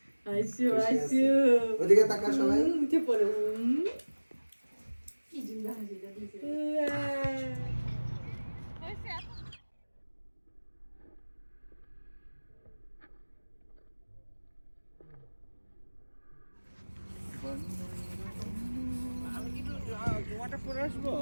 ওদিকে তাকা সবাই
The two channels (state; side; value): inverted; both; correlation -1.00